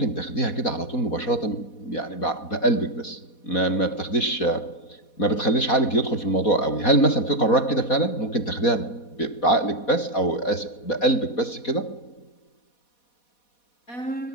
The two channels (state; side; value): late; right; 4.2 ms